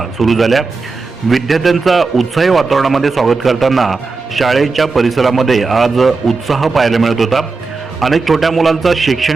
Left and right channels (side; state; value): left; quieter; 4.1 dB